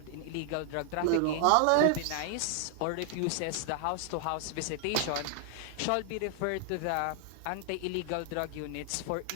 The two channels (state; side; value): different; both; correlation 0.00